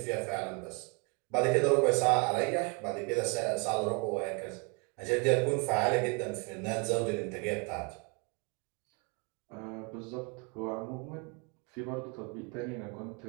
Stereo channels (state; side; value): quieter; left; 33.5 dB